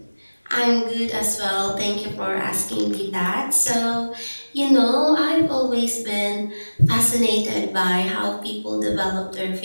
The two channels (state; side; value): inverted; both; correlation -1.00